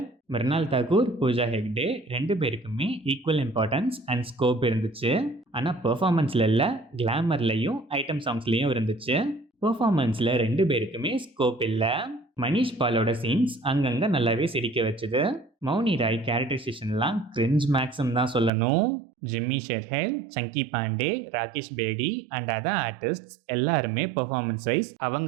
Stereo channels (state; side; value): drops out; left; at 18.5 s